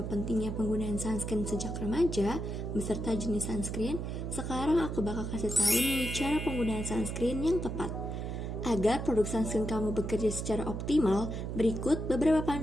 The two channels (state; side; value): noise; right; hum, 4 dB below the sound